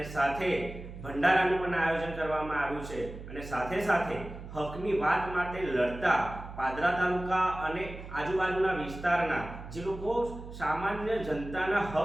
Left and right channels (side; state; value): right; noise; hum, 12 dB below the sound